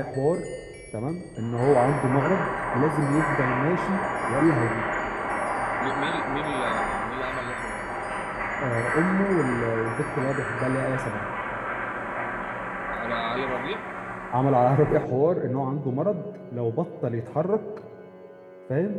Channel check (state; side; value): identical; both; correlation 1.00